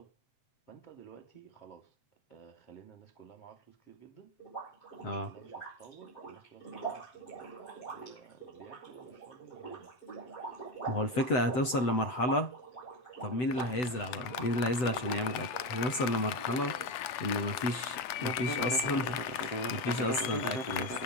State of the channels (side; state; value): right; late; 8.2 ms